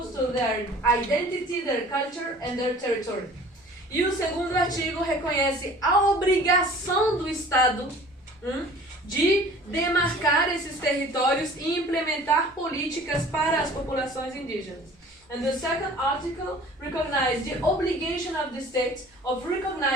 to their identity, their culture and their territory. E o segundo artigo reconhece a obrigação do Estado de demarcar esses territórios e implementar políticas para as populações indígenas. And the second article recognizes the obligation of the state of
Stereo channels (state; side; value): normal; both; correlation 0.47